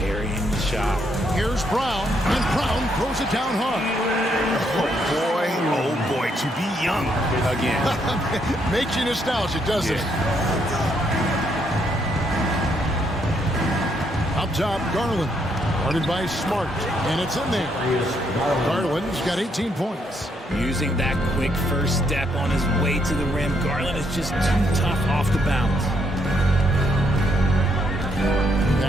the shot. Here's Brown, and Brown throws it down hard. Oh boy, to be young again. Makes you nostalgic, doesn't it? Up top, Garland. Guarded by Smart, and it's in there. Garland's got 18 points. Using that quick first step on his way to the rim, Garland is just too tough off the bounce.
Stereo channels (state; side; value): normal; both; correlation 0.74